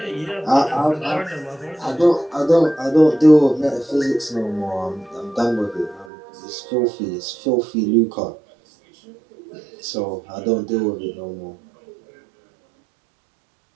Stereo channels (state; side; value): drops out; left; at 6.1 s